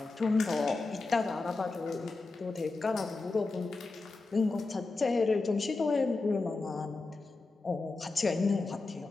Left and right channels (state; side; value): quieter; right; 3.6 dB